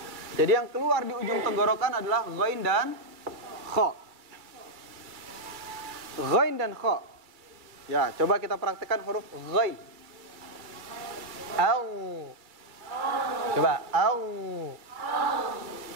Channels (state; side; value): late; left; 2.3 ms